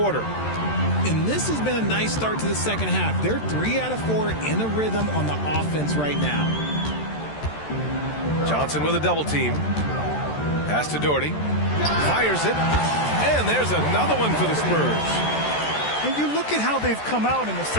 And this has been a nice start to the second half. They're 3 out of 4 in a rhythm on the offense right now. Johnson with a double team. Pass to Doherty. Fires it. And there's another one for the Spurs. And you look at how they've come out in the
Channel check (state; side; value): late; right; 13 ms